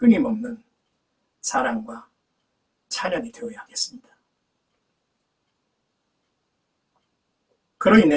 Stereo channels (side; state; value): both; identical; correlation 1.00